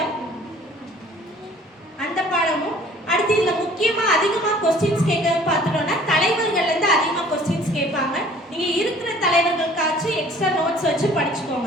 அந்த பாடமும். அடுத்து இதுல முக்கியமா அதிகமா क्वेश्चंस கேட்கறது பார்த்துட்டோம்னா தலைவர்கள்ல இருந்து அதிகமா क्वेश्चंस கேட்பாங்க. நீங்க இருக்கிற தலைவர்களுக்காச்சு எக்ஸ்ட்ரா நோட்ஸ் வச்சு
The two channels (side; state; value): both; normal; correlation 0.52